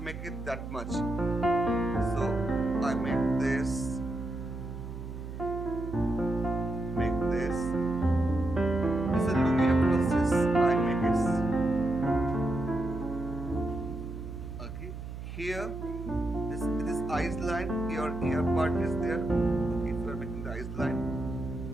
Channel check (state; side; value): noise; right; hum, 9 dB below the sound